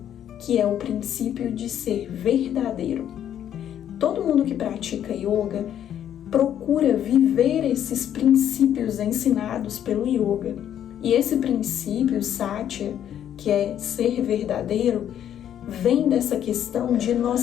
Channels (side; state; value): right; quieter; 10.2 dB